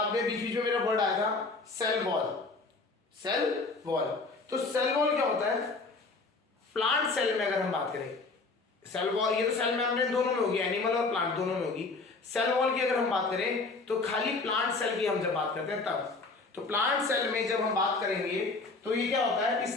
में बीच बीच में मेरा वर्ड आया था, सेल वॉल। Cell wall. तो सेल वॉल क्या होता है? प्लांट सेल में अगर हम बात करें, सेल वॉल, ये तो सेल मेम्ब्रेन दोनों में होगी, एनिमल और प्लांट दोनों में होगी। सेल वॉल की अगर हम बात करें तो खाली प्लांट सेल की हम जब बात करते हैं तब, तो प्लांट सेल में जब हम बात करेंगे तो ये क्या होता है कि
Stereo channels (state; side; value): quieter; right; 3.8 dB